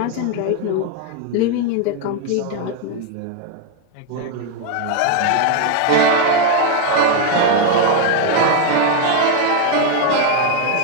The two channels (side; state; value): both; different; correlation 0.01